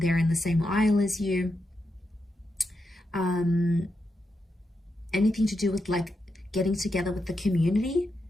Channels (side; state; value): both; normal; correlation 0.85